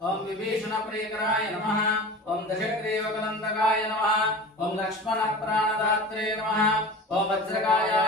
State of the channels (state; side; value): normal; both; correlation 0.35